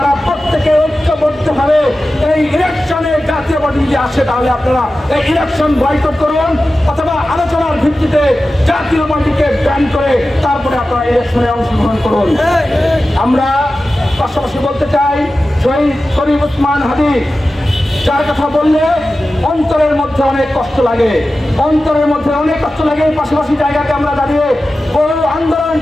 প্রত্যেকে ঐক্যবদ্ধভাবে এই ইলেকশনে জাতীয় পার্টি যদি আসে, তাহলে আপনারা এই ইলেকশন বয়কট করুন, অথবা আলোচনার ভিত্তিতে জাতীয় পার্টিকে ব্যান করে তারপরে আপনারা ইলেকশনে অংশগ্রহণ করুন। আমরা পাশাপাশি বলতে চাই, শহীদ শরীফ ওসমান হাদি যার কথা বললে অন্তরের মধ্যে অনেক কষ্ট লাগে, অন্তরের মধ্যে অনেক কষ্ট লাগে। পাশাপাশি জায়গাতে আমরা দাঁড়িয়ে বহু আন্দোলন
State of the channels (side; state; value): both; normal; correlation 0.94